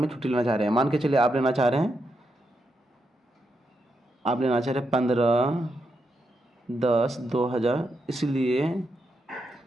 छुट्टी लेना चाह रहे हैं, मान के चलिए आप लेना चाह रहे हैं 15/10/2000, इसलिए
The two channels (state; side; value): normal; both; correlation 0.83